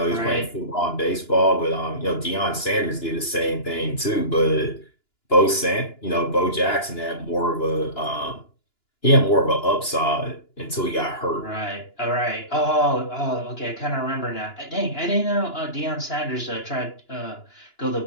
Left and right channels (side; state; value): right; late; 2.9 ms